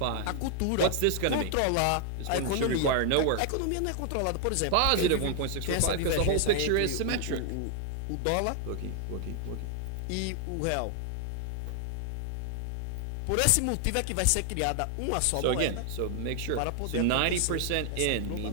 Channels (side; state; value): both; different; correlation 0.00